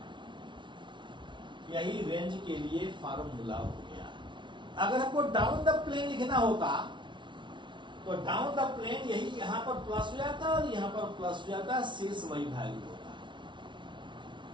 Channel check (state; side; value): late; left; 0.24 ms